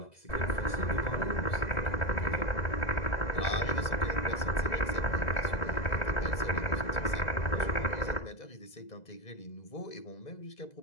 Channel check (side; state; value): right; late; 2.0 ms